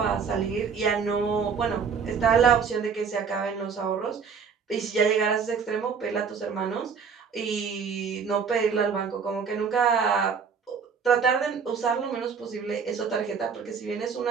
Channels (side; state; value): left; quieter; 6.1 dB